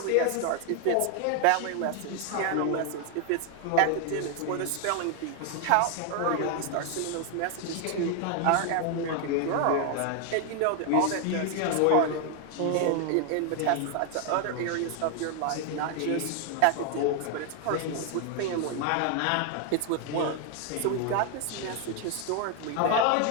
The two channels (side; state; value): both; different; correlation 0.00